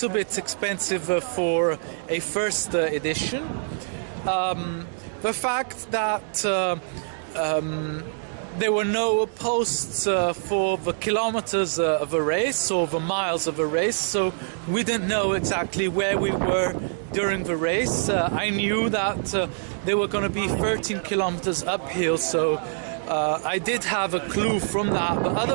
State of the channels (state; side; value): silent; left; digital silence